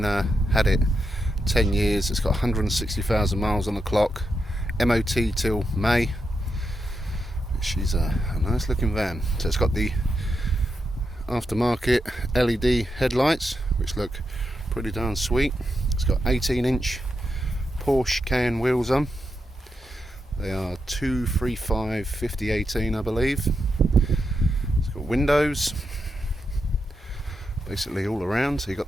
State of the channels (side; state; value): both; normal; correlation 0.85